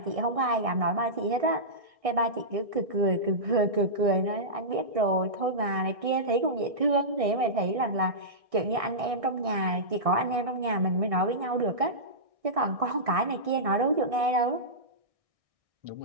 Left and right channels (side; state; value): left; late; 1.6 ms